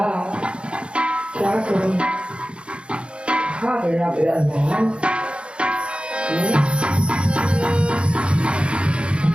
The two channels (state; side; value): late; left; 0.057 ms